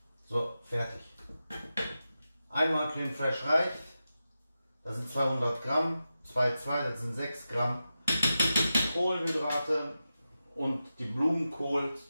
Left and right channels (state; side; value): inverted; both; correlation -0.92